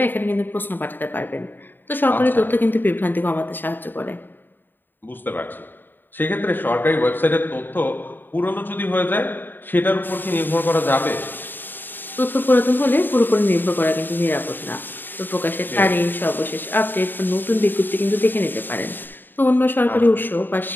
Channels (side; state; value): right; late; 0.093 ms